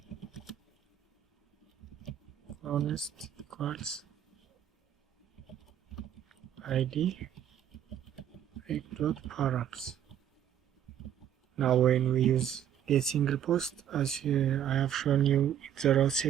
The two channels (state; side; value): quieter; left; 10.1 dB